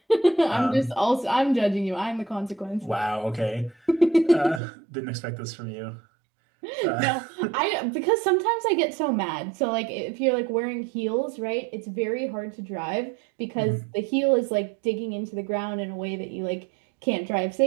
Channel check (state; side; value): drops out; left; at 4.6 s